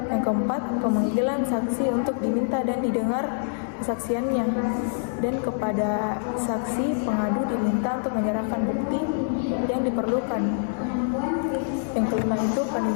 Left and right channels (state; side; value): silent; right; digital silence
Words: Yang keempat, pemanggilan saksi untuk diminta dan didengar kesaksiannya, dan kepada saksi pengadu diminta untuk menyerahkan bukti yang diperlukan. Yang kelima itu